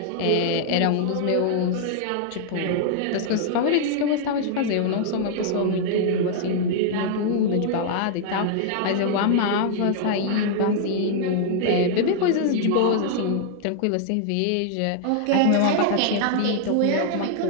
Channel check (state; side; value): different; both; correlation -0.01